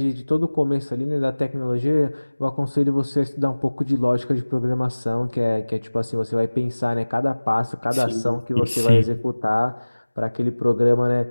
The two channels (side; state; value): both; inverted; correlation -1.00